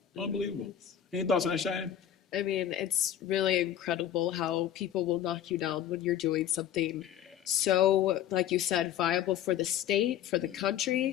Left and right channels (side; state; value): right; quieter; 10.4 dB